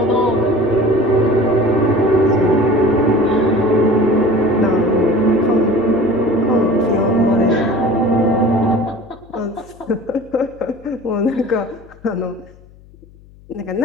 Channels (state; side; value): noise; left; hum, 25 dB below the sound